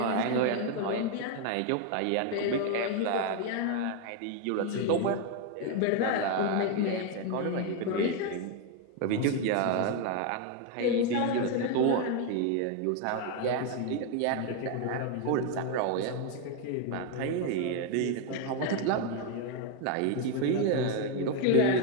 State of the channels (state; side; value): different; both; correlation 0.01